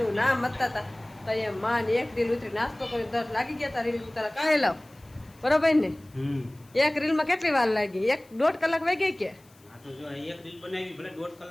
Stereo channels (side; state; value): left; noise; hiss, 29 dB below the sound